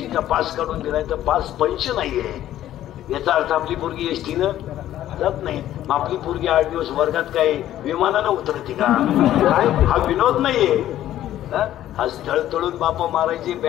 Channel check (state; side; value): quieter; right; 12.7 dB